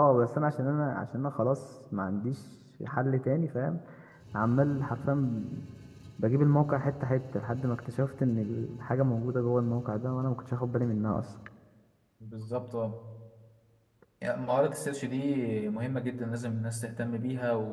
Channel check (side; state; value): both; identical; correlation 1.00